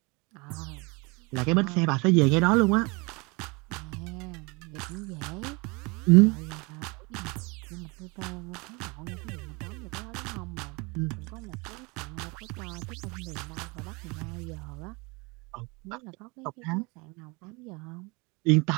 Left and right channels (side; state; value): left; quieter; 27.7 dB